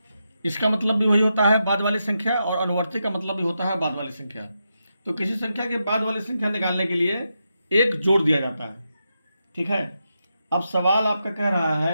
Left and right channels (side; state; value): both; inverted; correlation -0.86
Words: इसका मतलब भी वही होता है, बाद वाली संख्या, और अनुवर्ती का मतलब भी होता है बाद वाली संख्या। तो किसी संख्या के बाद वाली संख्या निकालने के लिए 1 जोड़ दिया जाता है। ठीक है, अब सवाल आपका कह रहा